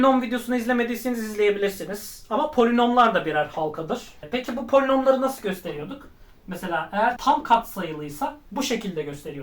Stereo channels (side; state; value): both; identical; correlation 1.00